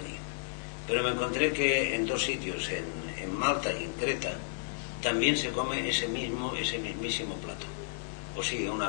Pero me encontré que en dos sitios, en Malta y en Creta, también se come ese mismísimo plato. O sí,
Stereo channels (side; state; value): right; silent; digital silence